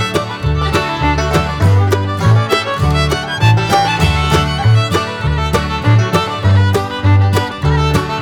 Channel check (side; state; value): both; identical; correlation 1.00